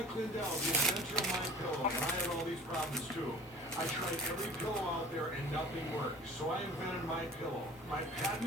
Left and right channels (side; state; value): both; normal; correlation 0.45